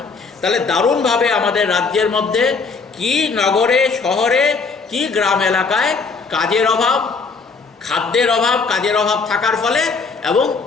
তাহলে দারুণভাবে আমাদের রাজ্যের মধ্যে কি নগরে, শহরে, কি গ্রাম এলাকায় কাজের অভাব, খাদ্যের অভাব, কাজের অভাব থাকার ফলে এবং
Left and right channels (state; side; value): quieter; right; 4.6 dB